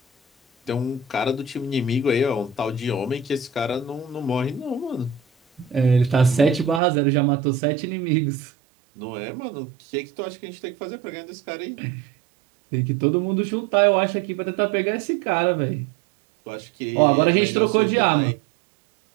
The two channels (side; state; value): left; drops out; at 6.8 s